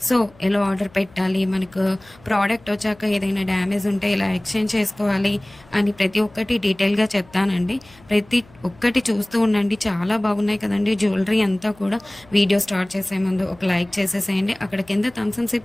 సో ఎలా ఆర్డర్ పెట్టాలి, మనకు ప్రోడక్ట్ వచ్చాక ఏదైనా డ్యామేజ్ ఉంటే ఎలా ఎక్స్చేంజ్ చేసుకోవాలి అని ప్రతి ఒక్కటి డీటెయిల్గా చెప్తానండి. ప్రతి ఒక్కటి చూస్తూ ఉండండి. చాలా బాగున్నాయి కదండి జ్యువెలరీ అంతా కూడా. వీడియో స్టార్ట్ చేసే ముందు ఒక లైక్ చేసేసేయండి. అక్కడ కింద థమ్స్ అప్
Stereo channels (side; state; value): left; noise; hum, 26 dB below the sound